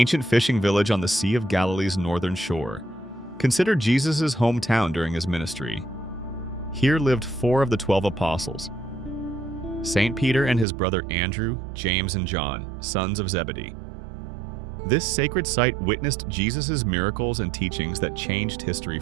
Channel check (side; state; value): left; drops out; at 10.7 s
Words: fishing village on the Sea of Galilee's northern shore, considered Jesus' hometown during his ministry. Here lived 4 of the 12 apostles: St. Peter and his brother Andrew, James, and John, sons of Zebedee. This sacred site witnessed Jesus' miracles and teachings that changed history